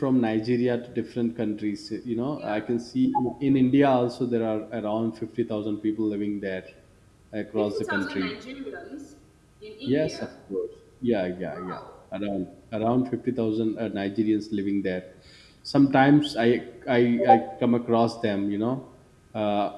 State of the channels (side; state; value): both; identical; correlation 1.00